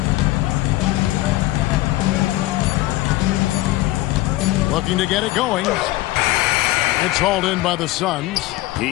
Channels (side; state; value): right; quieter; 17.5 dB